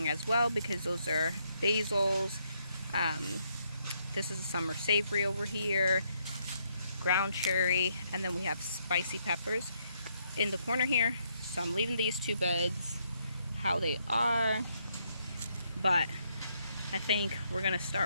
as well, because those are basils. This is a summer savory over here, ground cherry, and then we have spicy peppers in the corner here. So I'm leaving these two beds how they are, but I think we're gonna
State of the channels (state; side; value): inverted; both; correlation -0.75